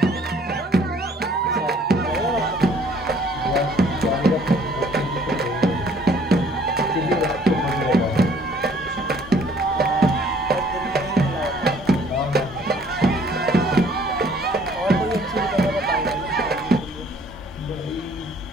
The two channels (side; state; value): both; normal; correlation 0.58